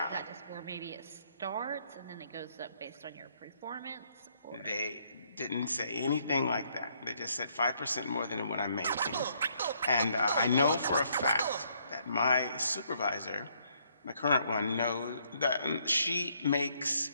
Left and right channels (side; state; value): both; inverted; correlation -0.70